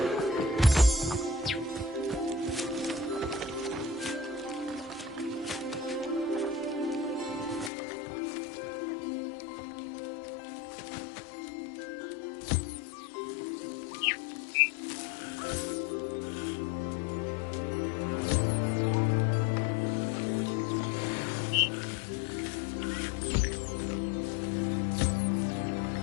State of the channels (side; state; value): right; drops out; at 7.7 s